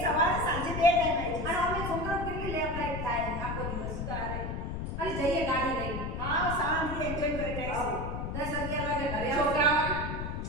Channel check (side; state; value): left; noise; rumble, 4 dB below the sound